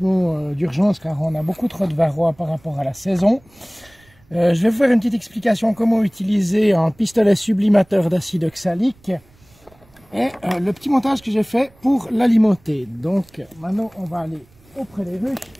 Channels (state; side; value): noise; right; rumble, 30 dB below the sound